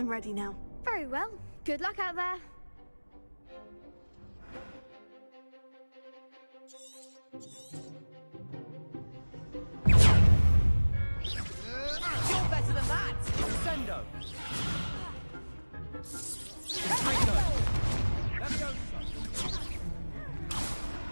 ready now. Very well. Good luck out there. You're better than that! Sendo!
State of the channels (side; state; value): both; inverted; correlation -1.00